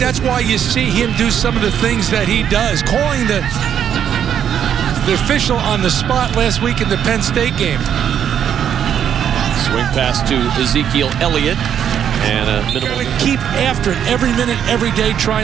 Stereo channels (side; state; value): left; quieter; 9.0 dB